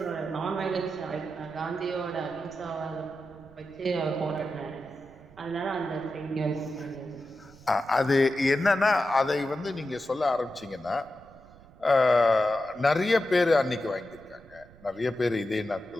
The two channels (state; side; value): noise; right; rumble, 23 dB below the sound